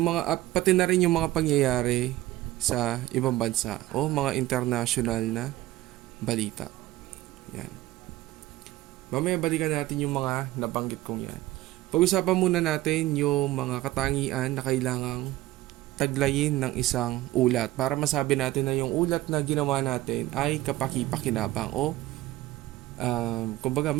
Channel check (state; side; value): quieter; left; 16.7 dB